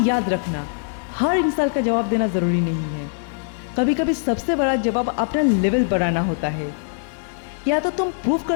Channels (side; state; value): right; silent; 64 dB below the other